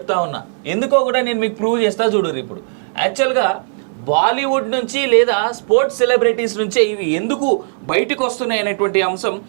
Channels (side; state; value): left; silent; digital silence